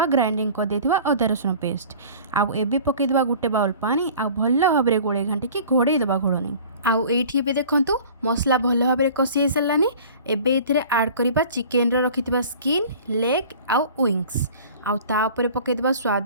ଗ୍ରାଇଣ୍ଡିଙ୍ଗ କରିଦେଇଥିବା ଅଦା ରସୁଣ ପେଷ୍ଟ। ଆଉ ଏବେ ପକାଇଦେବା ଗୋଟେ ବାଉଲ୍ ପାଣି, ଆଉ ଭଲ ଭାବରେ ଗୋଳେଇ ଘାଣ୍ଟିକି ଘୋଡ଼େଇ ଦେବା ଘୋଡ଼ଣୀ। ଆଉ ଏଇଠି ଏବେ ଦେଖନ୍ତୁ ମସଲା ଭଲ ଭାବରେ କଷି ହେଇସାରିଲାନି। ଏବେ ଏଥିରେ ଆଡ଼୍ କରିବା ଚିକେନ୍ର ରଖିଥିବା ସ୍କିନ୍, ଲେଗ୍ ଆଉ ୱିଙ୍ଗସ୍। ଆଉ ତା ଉପରେ ପକାଇଦେବା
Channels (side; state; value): both; inverted; correlation -0.44